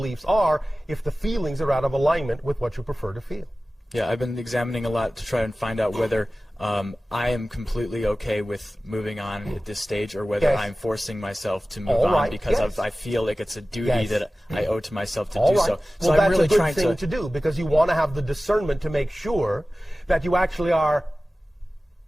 are if the feelings are out of alignment with what you prefer to feel. Yeah, I've been examining a lot to try and find out whether I am completely okay with moving on at this stage, or whether I'm forcing myself to move on because I feel like it's a duty that I owe to myself to do so. So well, I'm really that's a trying good thing to do, because you want to have the discernment to make sure that you actually are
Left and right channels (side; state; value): both; normal; correlation 0.96